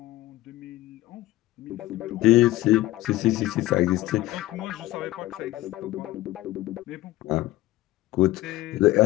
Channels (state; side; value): quieter; right; 16.8 dB